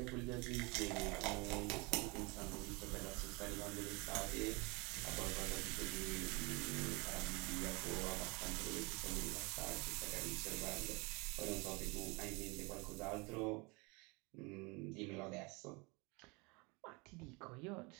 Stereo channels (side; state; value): left; quieter; 27.7 dB